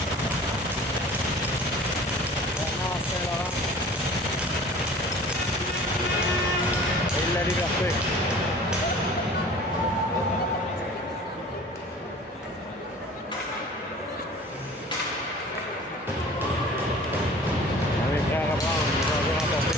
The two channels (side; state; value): both; normal; correlation 0.45